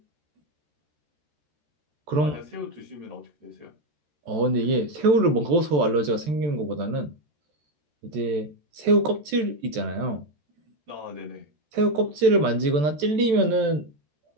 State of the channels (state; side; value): late; left; 14 ms